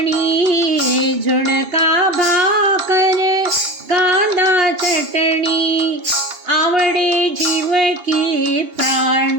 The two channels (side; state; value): left; late; 2.8 ms